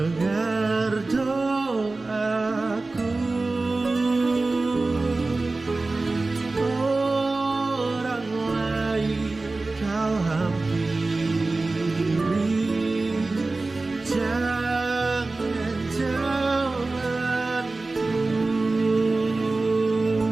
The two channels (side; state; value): left; quieter; 3.4 dB